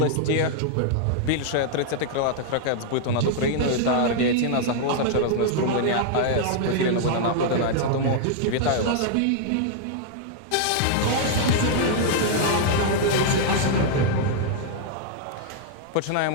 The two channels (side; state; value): both; different; correlation -0.01